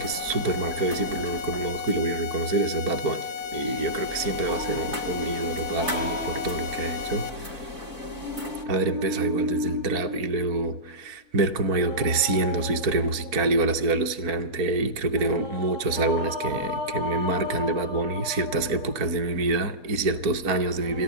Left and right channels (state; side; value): late; left; 4.5 ms